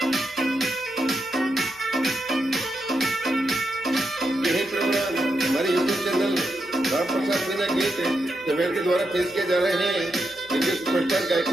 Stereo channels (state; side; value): noise; left; hum, 26 dB below the sound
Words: हमारे यूट्यूब चैनल राम प्रसाद मीना गीत समेल के द्वारा पेश किए जा रहे हैं। इंडियन सुपरस्टार गायक